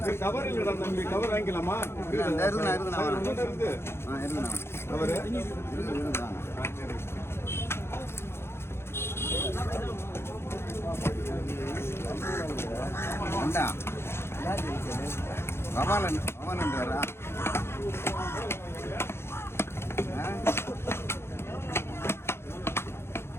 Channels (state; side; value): late; right; 0.12 ms